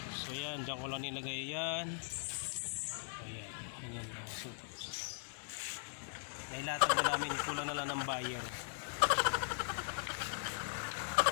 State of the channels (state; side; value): silent; right; 51 dB below the other